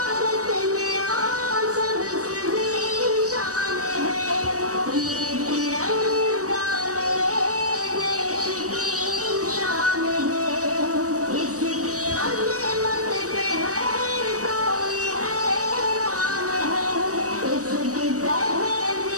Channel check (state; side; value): late; left; 0.66 ms